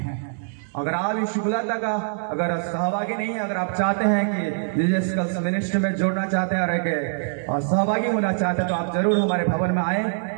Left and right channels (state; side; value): silent; left; digital silence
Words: अगर आप यीशु बुलाता का अगर सहभागी नहीं है, अगर आप चाहते हैं कि जीसस कल्स मिनिस्ट्री में जुड़ना चाहते हैं और सहभागी होना चाहते हैं तो आप जरूर हमारे भवन में आए